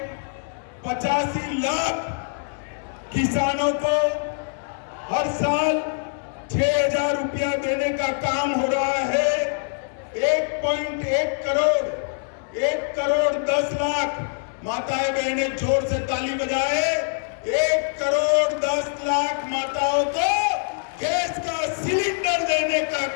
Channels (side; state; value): right; silent; digital silence